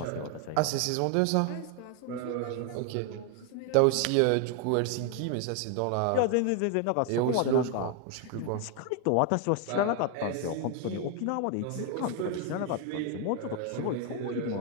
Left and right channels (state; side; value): different; both; correlation 0.00